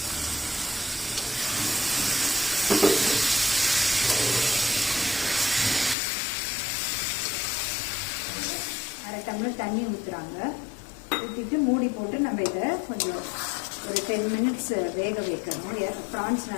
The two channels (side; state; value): right; drops out; at 6.0 s